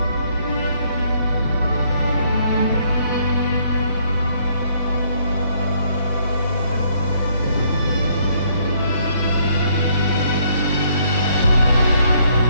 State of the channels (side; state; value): both; inverted; correlation -0.67